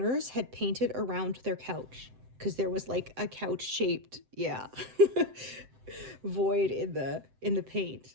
had painted around their couch because there was like a couch shaped, yeah, void in the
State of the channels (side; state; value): left; late; 7.8 ms